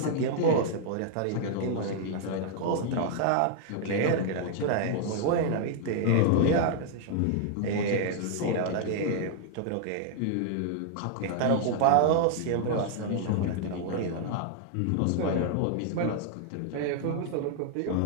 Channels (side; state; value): both; different; correlation -0.01